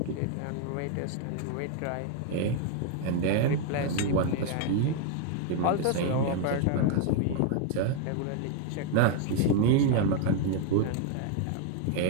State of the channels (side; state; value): both; different; correlation 0.00